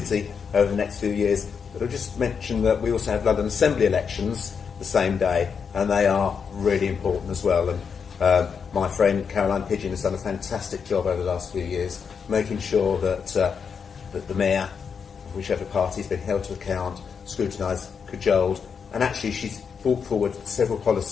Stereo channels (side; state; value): right; quieter; 6.3 dB